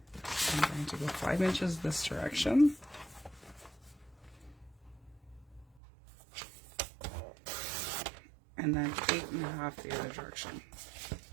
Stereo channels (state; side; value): drops out; left; at 5.7 s